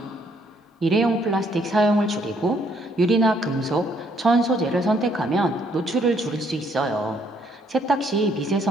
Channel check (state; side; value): normal; both; correlation 0.68